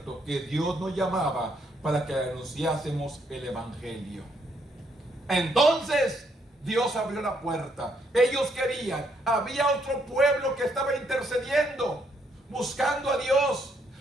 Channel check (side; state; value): both; normal; correlation 0.73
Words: que Dios nos llamaba para que anunciásemos el evangelio. Entonces Dios abrió la puerta. Ellos querían, había otro pueblo que estaba intercediendo, buscando a Dios,